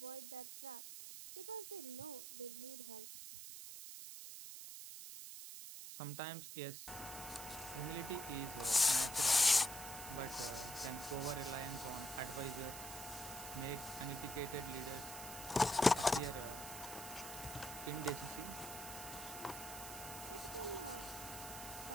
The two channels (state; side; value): noise; right; hiss, 9 dB below the sound